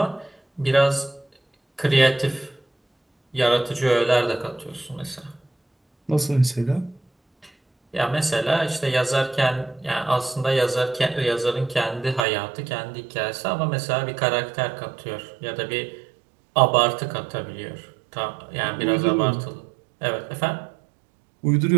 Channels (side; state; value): left; drops out; at 12.2 s